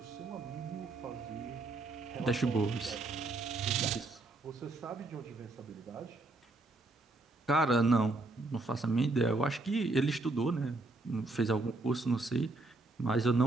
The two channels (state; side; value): quieter; left; 3.1 dB